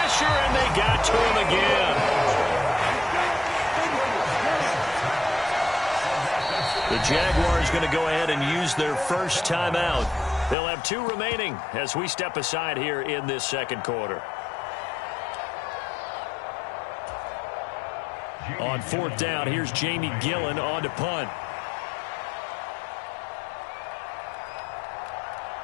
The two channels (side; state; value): right; drops out; at 10.6 s